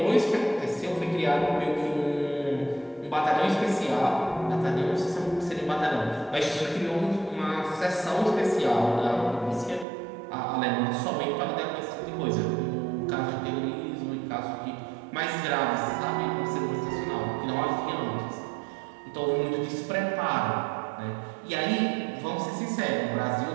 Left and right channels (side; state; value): left; drops out; at 9.9 s